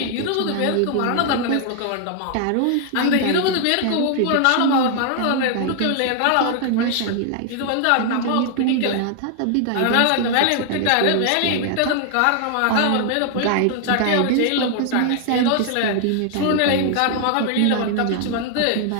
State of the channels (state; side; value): different; both; correlation 0.00